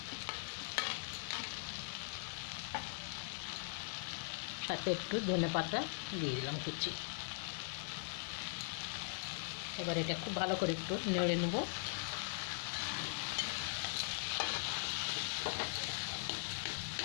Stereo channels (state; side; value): silent; right; digital silence